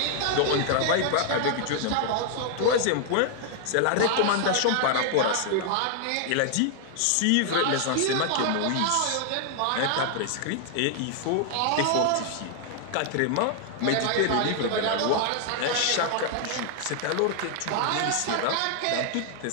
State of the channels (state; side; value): different; both; correlation 0.00